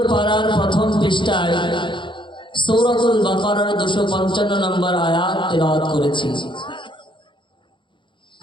পারার প্রথম পৃষ্ঠায় সূরাতুল বাকারার 255 নম্বর আয়াত তেলাওয়াত করেছি।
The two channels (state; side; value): late; right; 0.23 ms